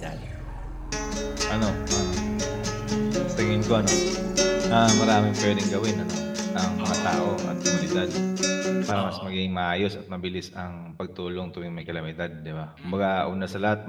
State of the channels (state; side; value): identical; both; correlation 1.00